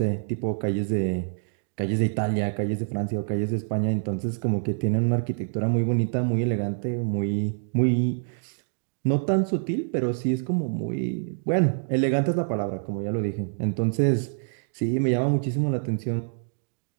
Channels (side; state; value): left; silent; digital silence